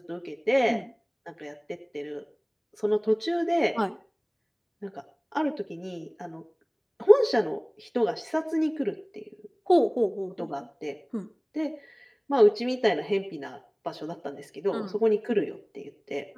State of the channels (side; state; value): both; identical; correlation 1.00